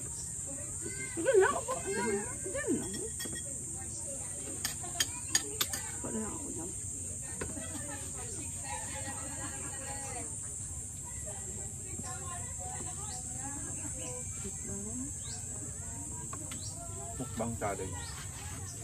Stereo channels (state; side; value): identical; both; correlation 1.00